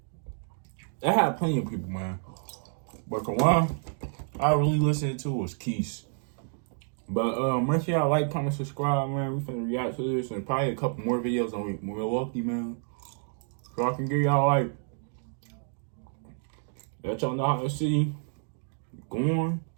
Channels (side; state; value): left; silent; 58 dB below the other